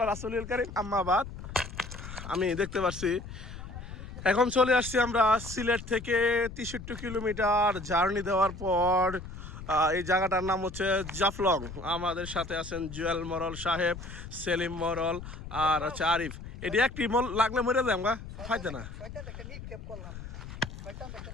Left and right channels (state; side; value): noise; left; rumble, 11 dB below the sound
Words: রাসূলিল কারীম আম্মা বাদ। আমি দেখতে পাচ্ছি এখন চলে আসছি আমরা সিলেট থেকে 63 কিলোমিটার জার্নি দেওয়ার পর এই জায়গাটার নাম হচ্ছে জাফলং। আমাদের সাথে আছেন জুয়েল মরল সাহেব, সেলিম মরল আর হচ্ছে আরিফ। এটি একটি মল লাগলে মরে যায় আমরা ফাইতে না।